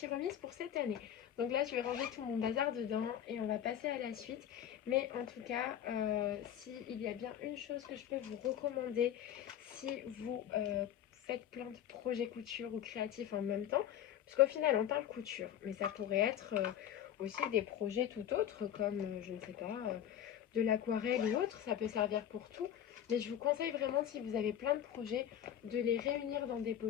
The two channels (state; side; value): quieter; right; 10.3 dB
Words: remise pour cette année. Donc là, je vais ranger tout mon bazar dedans et on va passer à la suite. Mais en tout cas, s'il y a bien une chose que je peux vous recommander, si vous faites plein de projets couture ou créatifs en même temps, parce qu'au final, on parle couture, mais ça pourrait être aussi des projets tout autres, comme, je ne sais pas, de l'aquarelle ou autre, ça peut servir pour tout. Mais je vous conseille vraiment, si vous avez plein de projets, de les réunir dans des